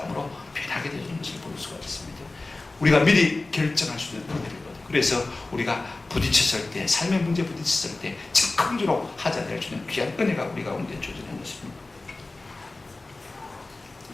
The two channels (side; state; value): right; quieter; 3.2 dB